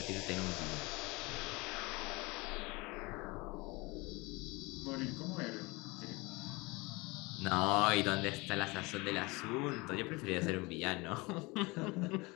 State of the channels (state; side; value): quieter; right; 24.8 dB